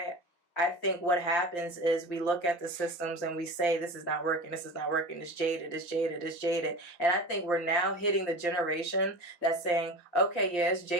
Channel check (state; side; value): late; right; 5.7 ms